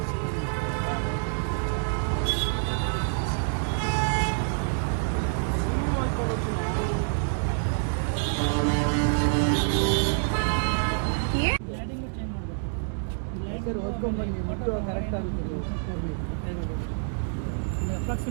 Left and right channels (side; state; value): left; silent; digital silence